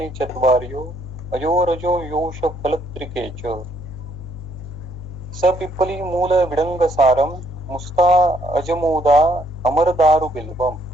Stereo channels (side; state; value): left; noise; hum, 12 dB below the sound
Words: चत्वार्यो अजोरजो योष फलत्रिके च सपिप्पली मूल विडंग सारम मुस्ता अजमोदा अमरदारु बिल्वम